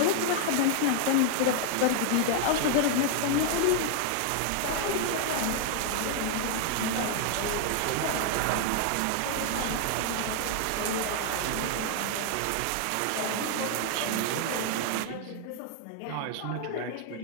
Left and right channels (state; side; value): different; both; correlation 0.00